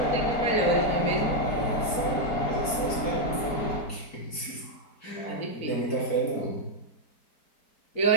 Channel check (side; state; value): right; late; 4.6 ms